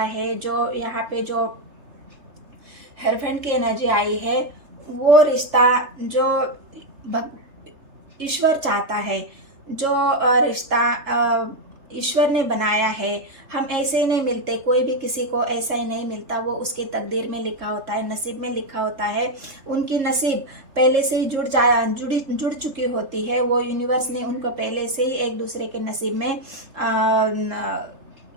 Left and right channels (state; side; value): late; left; 3.3 ms